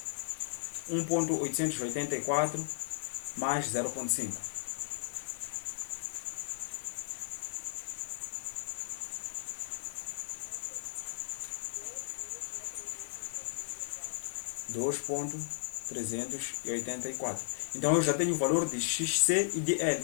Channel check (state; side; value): silent; right; digital silence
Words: 1.884 mais 0.5. 2.384. Então eu já tenho o valor de XC e de